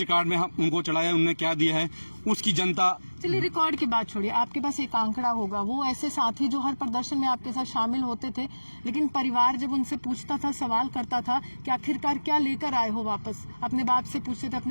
में हम उनको चढ़ाया, उन्होंने क्या दिया है, उसकी जनता। चलिए रिकॉर्ड की बात छोड़िए, आपके पास एक आंकड़ा होगा, वो ऐसे साथी जो हर प्रदर्शन में आपके साथ शामिल होते थे, लेकिन परिवार जब उनसे पूछता था, सवाल करता था कि आखिरकार क्या लेकर आए हो वापस, अपने बाप से पूछते थे,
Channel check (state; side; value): inverted; both; correlation -1.00